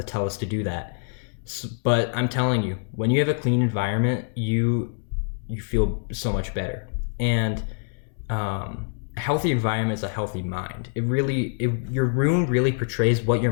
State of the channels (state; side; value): silent; right; 62 dB below the other